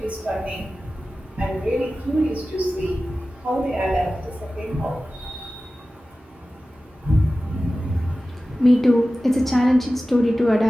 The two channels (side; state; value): both; normal; correlation 0.95